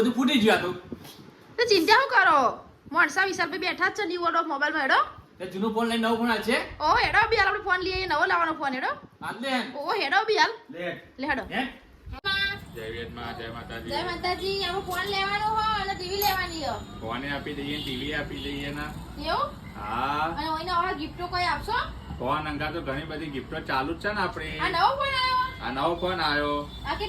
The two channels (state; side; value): identical; both; correlation 1.00